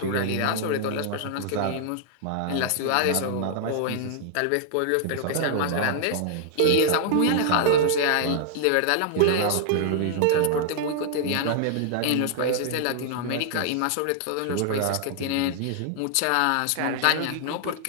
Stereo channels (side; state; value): both; different; correlation -0.01